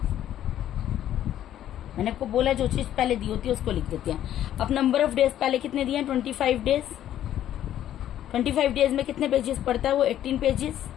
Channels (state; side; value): quieter; right; 11.6 dB